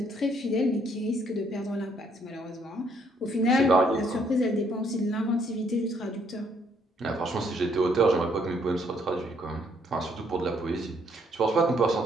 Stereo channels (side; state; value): both; normal; correlation 0.69